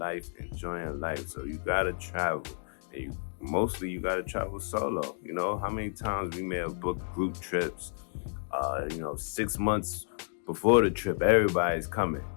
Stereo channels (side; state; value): right; silent; digital silence